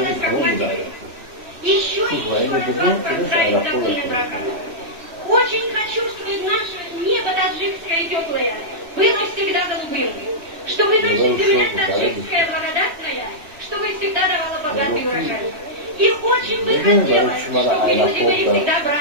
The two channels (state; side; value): late; left; 3.1 ms